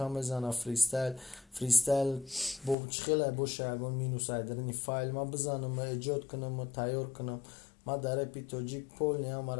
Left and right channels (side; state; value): right; drops out; at 2.8 s